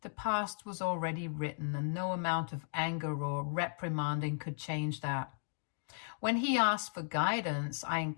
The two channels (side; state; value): right; silent; digital silence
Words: The past was already written, and no amount of anger or reprimanding could change that. When he asked for guidance, I